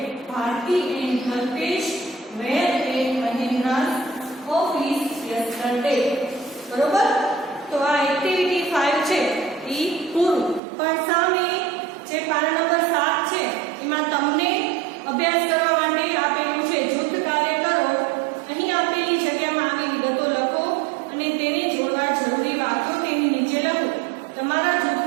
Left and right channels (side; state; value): left; drops out; at 10.6 s